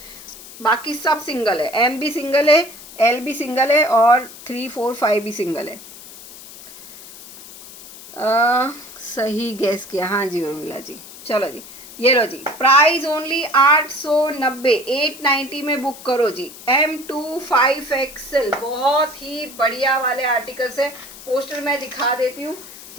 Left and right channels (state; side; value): noise; left; hiss, 17 dB below the sound